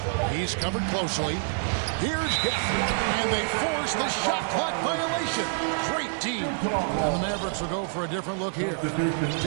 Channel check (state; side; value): silent; left; digital silence